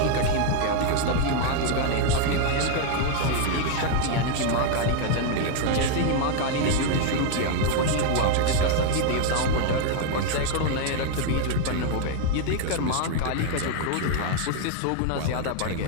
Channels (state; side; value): different; both; correlation 0.00